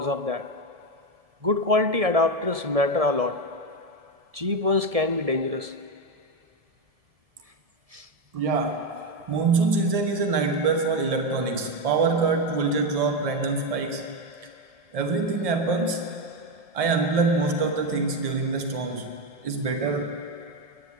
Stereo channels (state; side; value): late; left; 1.7 ms